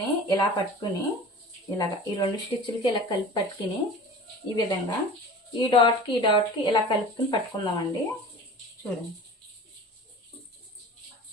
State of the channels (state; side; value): normal; both; correlation 0.39